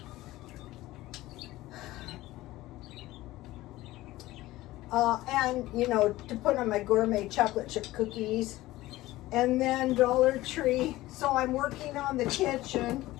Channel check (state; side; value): quieter; right; 17.3 dB